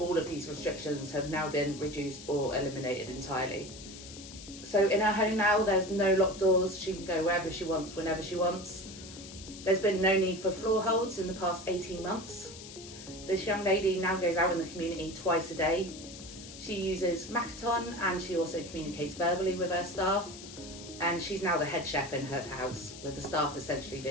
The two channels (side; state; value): left; noise; hiss, 14 dB below the sound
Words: of these restrictions have now been reduced or eliminated entirely. So in her home now, there's no locked doors. She can go wherever she wants, whenever she wants. There's been no need for floor holds in the past 18 months. This young lady now goes out in the community twice a day. She uses Makaton and she also communicates verbally with her staff. And she's now the head chef in her house, with the staff essentially